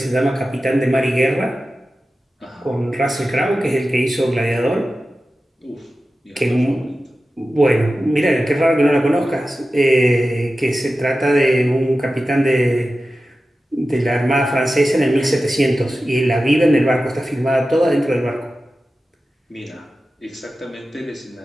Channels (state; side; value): normal; both; correlation 0.94